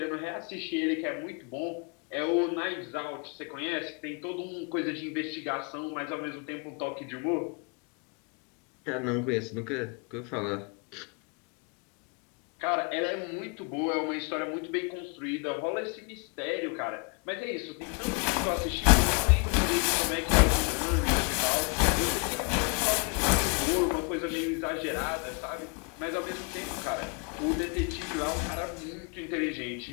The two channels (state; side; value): quieter; right; 35.3 dB